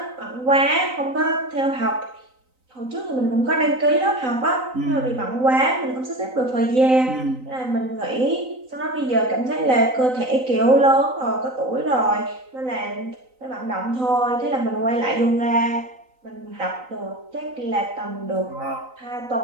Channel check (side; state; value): left; late; 3.9 ms